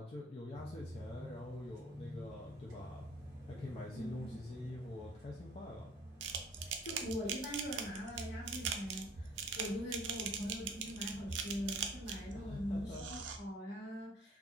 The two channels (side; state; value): both; normal; correlation 0.53